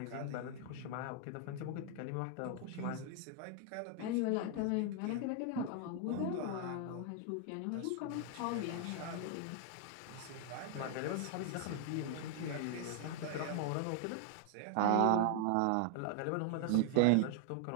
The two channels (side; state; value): both; different; correlation 0.00